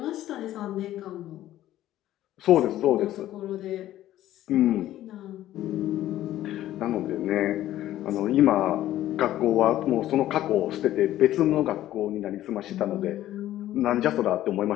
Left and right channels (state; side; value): quieter; right; 13.6 dB